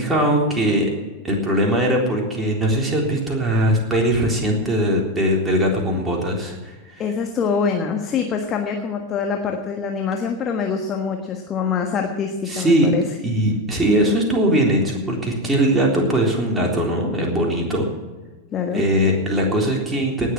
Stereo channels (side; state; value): both; normal; correlation 0.16